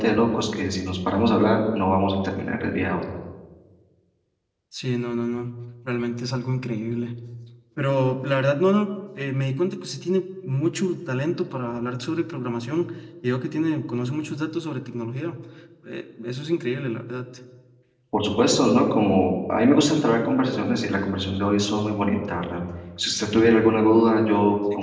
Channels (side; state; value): both; identical; correlation 1.00